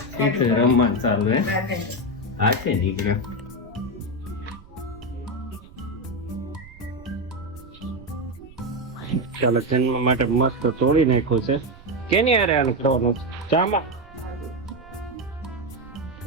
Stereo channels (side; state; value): right; noise; rumble, 21 dB below the sound